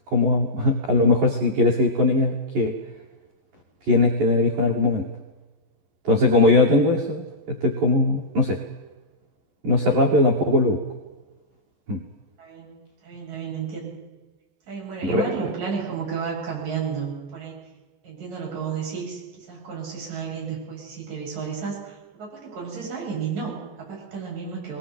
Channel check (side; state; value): left; late; 14 ms